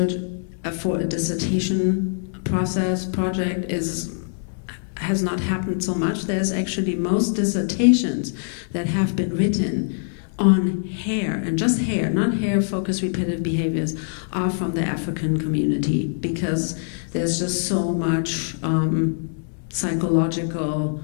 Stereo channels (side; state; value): right; silent; 63 dB below the other